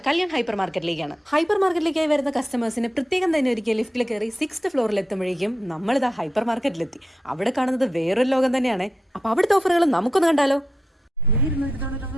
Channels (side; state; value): both; normal; correlation 0.87